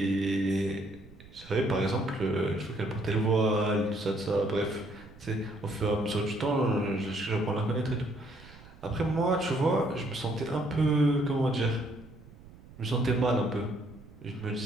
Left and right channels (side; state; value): right; noise; rumble, 21 dB below the sound